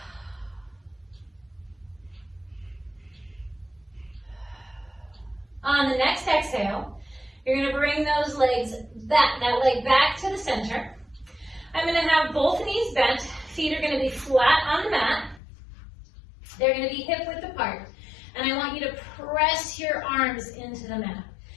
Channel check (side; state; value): right; drops out; at 15.4 s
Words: On the next exhale, you're going to bring those legs back, that leg back to the center. I'm going to have both knees bent. Feet are going to be flat on the mat. They're going to be hip width apart. And I want you to press your arms into the mat.